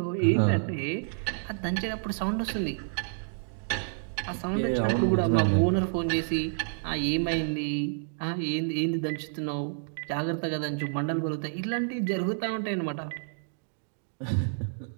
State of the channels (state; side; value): silent; left; digital silence